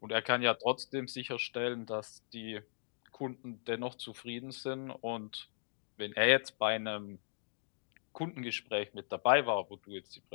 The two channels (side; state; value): right; silent; digital silence